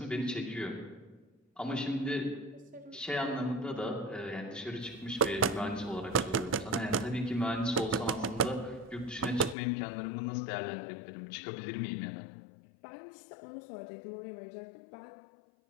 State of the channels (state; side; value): drops out; right; at 9.6 s